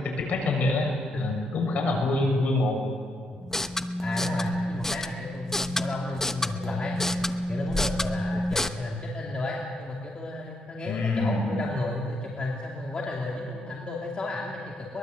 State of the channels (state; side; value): normal; both; correlation 0.78